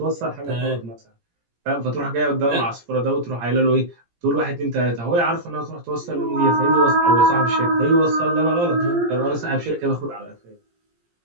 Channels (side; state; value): left; late; 17 ms